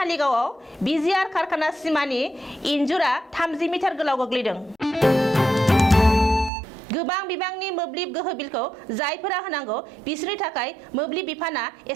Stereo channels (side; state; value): left; drops out; at 6.5 s